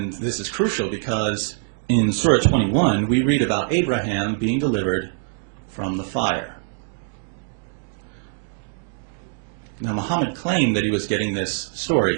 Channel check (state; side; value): silent; left; digital silence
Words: this is crucial because in Surah 21, we read about Abraham being delivered from the fire. Now, Muhammad claimed that he was getting this